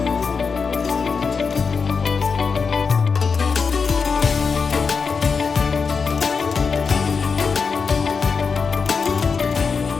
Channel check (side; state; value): right; quieter; 5.3 dB